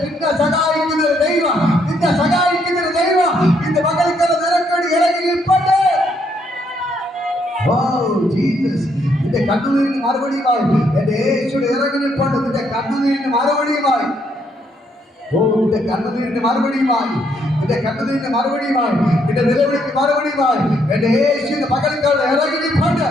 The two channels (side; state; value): both; normal; correlation 0.72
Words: നിന്നെ സഹായിക്കുന്ന ഒരു ദൈവം, നിന്നെ സഹായിക്കുന്ന ഒരു ദൈവം ഇന്ന് മകൾക്കാരെ നിരക്കടി ഇറങ്ങി നിൽപ്പട്ടെ. നിന്റെ കണ്ണുനീരിന് മറുപടിയുമായി എന്റെ യേശുവിടെ ഇറങ്ങി നിൽപ്പണ്ട്. നിന്റെ കണ്ണുനീരിന് മറുപടിയുമായി, നിന്റെ കണ്ണുനീരിന് മറുപടിയുമായി, നിന്റെ കണ്ണുനീരിന് മറുപടിയുമായി, നിന്റെ നിലവിളിക്ക് മറുപടിയുമായി എന്റെ യേശുവിന്റെ പകൽക്കാരുടെ ഇറങ്ങി നിൽപ്പണ്ട്.